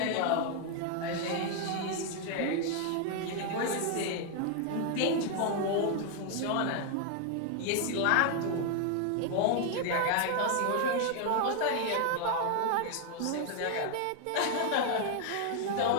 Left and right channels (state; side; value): different; both; correlation 0.00